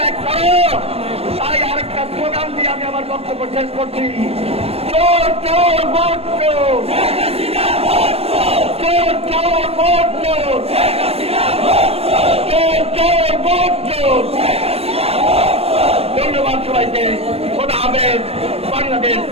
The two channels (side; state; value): left; late; 0.29 ms